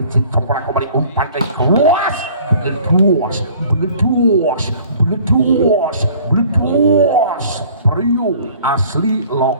sempurna kembali, umpan dari keluas, bleduas Priu asli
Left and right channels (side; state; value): both; inverted; correlation -0.52